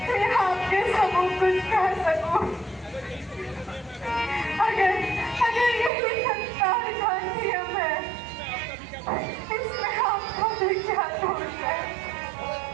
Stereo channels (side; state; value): left; drops out; at 5.9 s